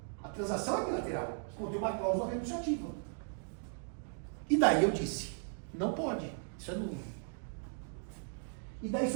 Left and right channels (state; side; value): silent; left; 53 dB below the other